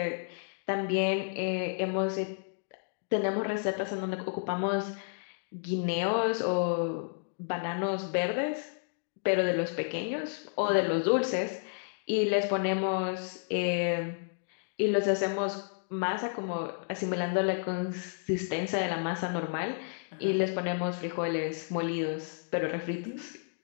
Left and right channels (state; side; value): silent; right; digital silence